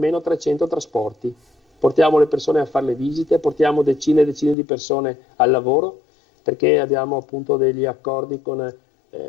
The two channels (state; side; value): drops out; right; at 4.5 s